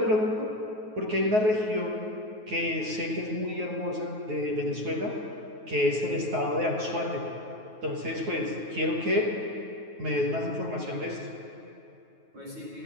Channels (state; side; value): late; left; 9.4 ms